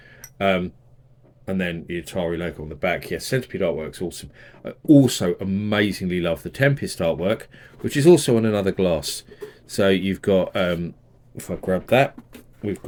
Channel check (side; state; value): both; identical; correlation 1.00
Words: And then the Atari logo on the back. Yes, Centipede artwork's awesome. I also amazingly love the Tempest artwork, which is also on another glass. So you've got, if I grab that, we've